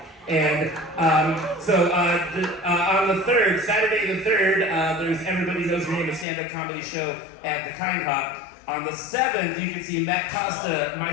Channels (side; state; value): right; drops out; at 6.2 s